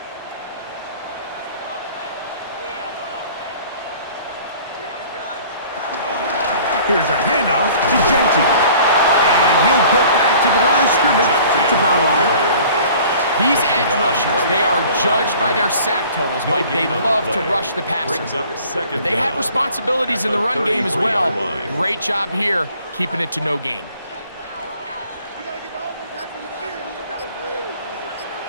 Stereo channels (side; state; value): both; inverted; correlation -0.50